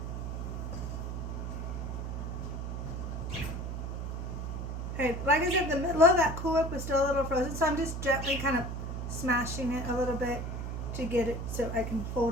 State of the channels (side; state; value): right; noise; hum, 4 dB below the sound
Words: Okay, like I said, the middle of that Cool Whip was still a little frozen, so I'm just gently kind of smashing it a little bit to get it so I can